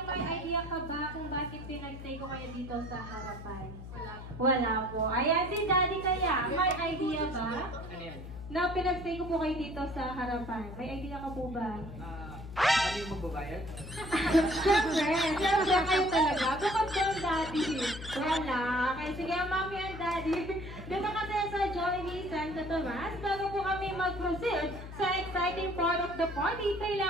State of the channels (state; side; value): noise; left; hum, 11 dB below the sound